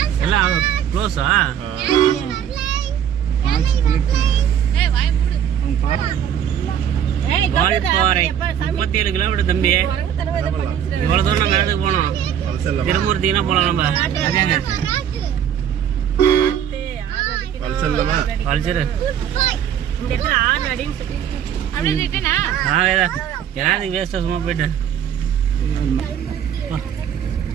எல்லாம் க்ளோஸா? வால்பாறை 37 கிலோமீட்டர் தம்பி. இவ்வளவு தூரம் நம்ம இடத்துக்கு போனோம். திருமூர்த்தினா போலாம் நம்ம. வேஸ்டா சும்மா போயிட்டு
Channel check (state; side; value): quieter; left; 9.2 dB